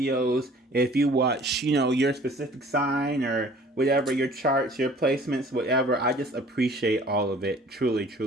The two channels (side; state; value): both; normal; correlation 0.51